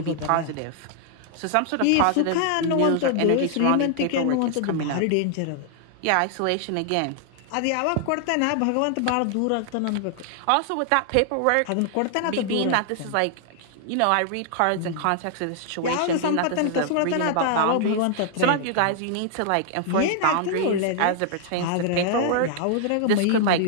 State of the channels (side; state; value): both; different; correlation 0.00